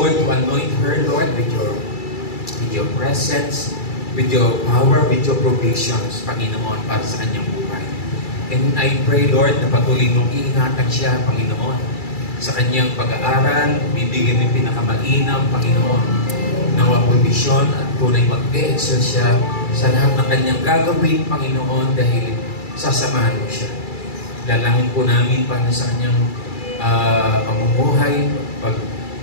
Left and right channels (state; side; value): late; right; 2.3 ms